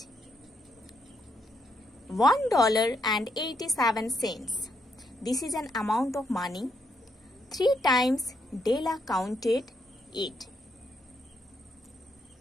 $1.87. This is an amount of money. 3 times Della counted it.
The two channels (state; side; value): normal; both; correlation 0.77